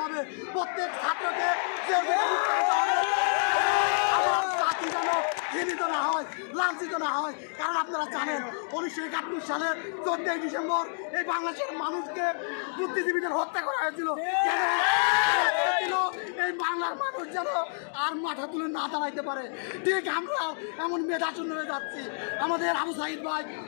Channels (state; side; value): silent; right; digital silence